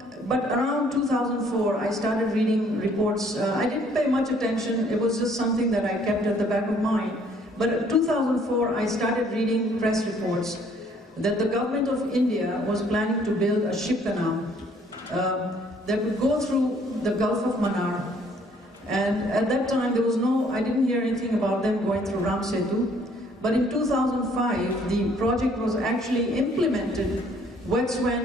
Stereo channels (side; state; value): both; normal; correlation 0.62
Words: But around 2004, I started reading reports. I didn't pay much attention. It was just something that I kept at the back of mind. But in 2004, I started reading press reports that the government of India was planning to build a ship canal that would go through the Gulf of Mannar. And at that time, there was I didn't hear anything about them going through Ram Sethu. But in 2005, the project was actually implemented. That's